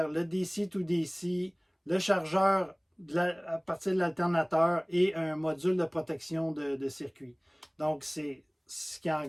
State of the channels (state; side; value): identical; both; correlation 1.00